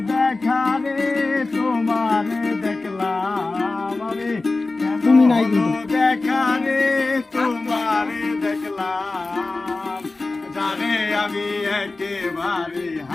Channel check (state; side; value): quieter; right; 3.4 dB